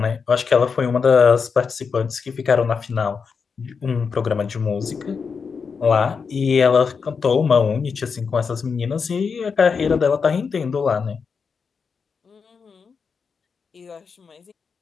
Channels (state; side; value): quieter; right; 5.6 dB